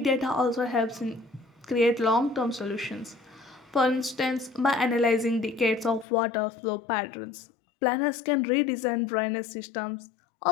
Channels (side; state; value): right; drops out; at 6.1 s